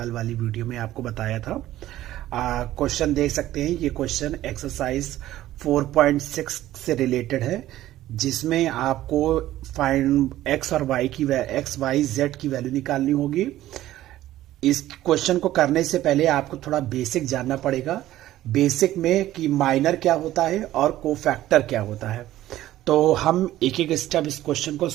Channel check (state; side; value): quieter; left; 14.3 dB